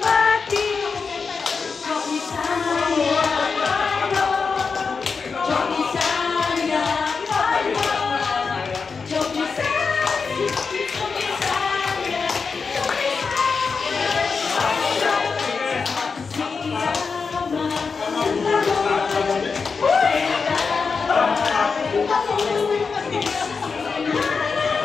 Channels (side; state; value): right; quieter; 5.1 dB